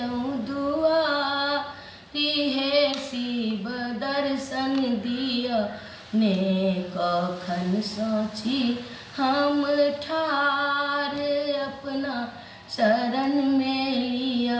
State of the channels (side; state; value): both; identical; correlation 1.00